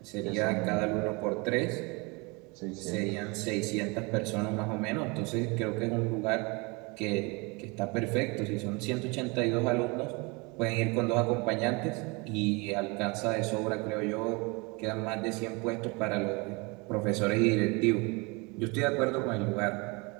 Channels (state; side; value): quieter; left; 28.0 dB